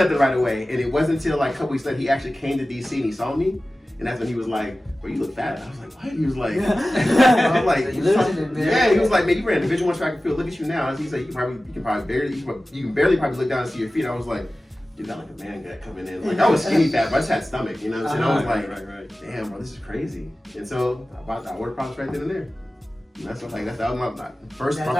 right away. And it wasn't until like a couple weeks later he actually came to DC and he saw me. And that's when he was like, bro, you look fat. I was like, what? He was like, I'm like, he was like, man, you ran Division I track and field. Look at you now. He said, you can barely look down and see your feet. I was like, you got like a man gut coming in. Like I was skinny fat, but I just had stomach, you know what I'm saying? I was like, right. Damn, bro, this is crazy. And so I ordered products right then and there. And that was my first. That's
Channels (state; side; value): normal; both; correlation 0.96